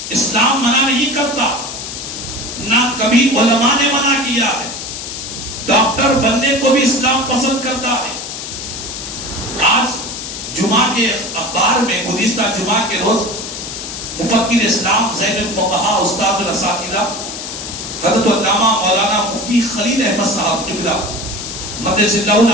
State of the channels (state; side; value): noise; left; hiss, 8 dB below the sound